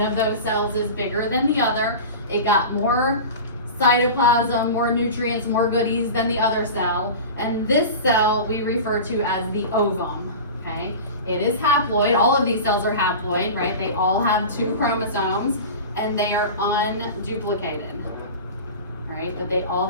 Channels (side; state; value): both; inverted; correlation -0.31